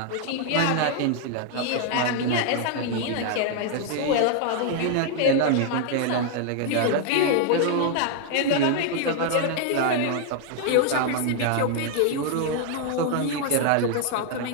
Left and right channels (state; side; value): different; both; correlation 0.00